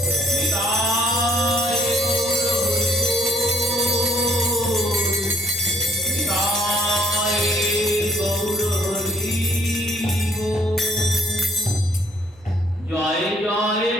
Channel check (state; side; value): normal; both; correlation 0.61